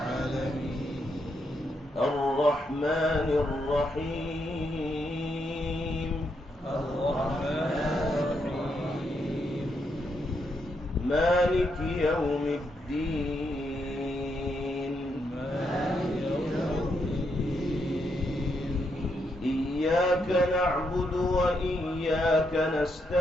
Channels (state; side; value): normal; both; correlation 0.79